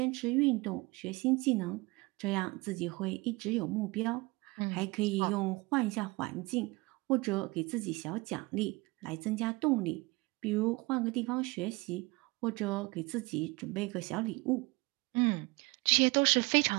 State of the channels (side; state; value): left; quieter; 24.2 dB